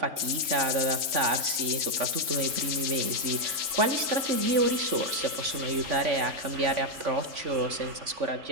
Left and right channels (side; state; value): left; late; 3.5 ms